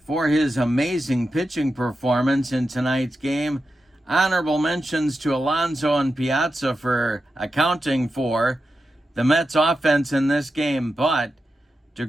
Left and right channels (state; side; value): normal; both; correlation 0.90